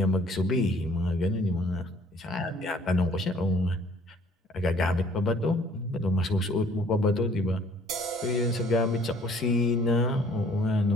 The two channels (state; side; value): normal; both; correlation 0.58